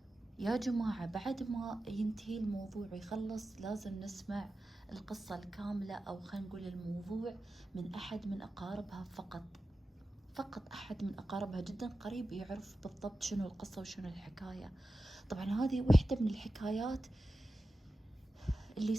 يا جماعة بعد ما ينتهي الموضوع ويخلص لازم نسمع القصة الكاملة، أو خلينا نقول الموضوع من أحد من أقاربها فقط أحد من أقاربها جدا قريب يعرف بالضبط شنو القصة وشنو الحكاية. طبعا هذه واحدة من الحكايات اللي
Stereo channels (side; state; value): both; normal; correlation 0.93